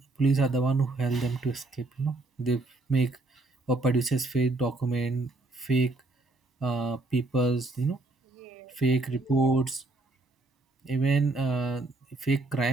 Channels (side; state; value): left; quieter; 3.0 dB